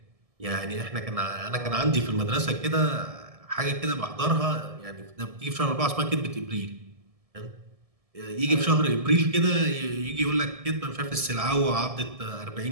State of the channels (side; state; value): left; late; 1.7 ms